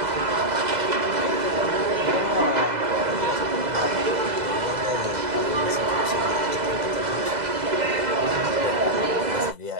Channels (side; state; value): left; late; 2.0 ms